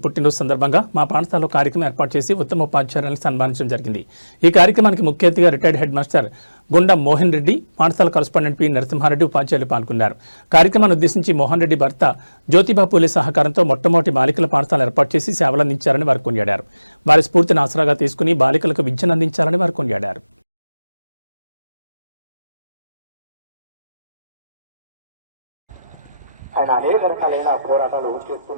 పుట్టినరోజు సందర్భంగా మా పాఠశాలలో కార్యక్రమం ఏర్పాటు చేసి ఉత్తమ ఉపాధ్యాయులను సన్మానించడం జరిగింది. ఈ కార్యక్రమానికి ముఖ్య అతిథిగా రిటైర్డ్ హెడ్ మాస్టర్ గుండం మోహన్ రెడ్డి, పాఠశాల కరస్పాండెంట్ పి నరసింహారెడ్డి ఉపాధ్యాయులు పాల్గొన్నారు. కార్యక్రమాన్ని ఉద్దేశించి మోహన్ రెడ్డి భర్త జ్యోతిబా పూలే సహకారంతో మొట్టమొదటి బాలికల పాఠశాల ఏర్పాటు చేసి సేవలందించారని వారు కొనియాడారు. వారి స్ఫూర్తిని ఆసరాగా తీసుకుని బాలికలకు విద్యను అందించాలని వారు కొనియాడారు. ఆయన అనేక రకాలైన పోరాటాలు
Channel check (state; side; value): inverted; both; correlation -0.97